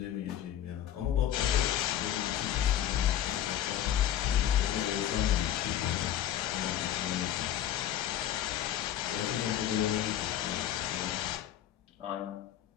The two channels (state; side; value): quieter; right; 11.4 dB